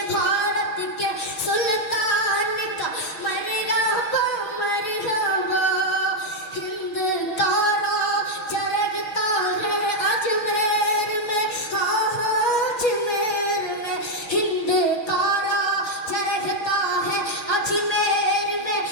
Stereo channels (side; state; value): right; late; 6.3 ms